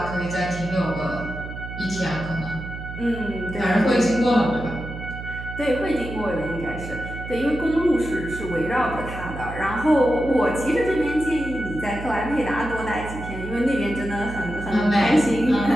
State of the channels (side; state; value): right; noise; hum, 9 dB below the sound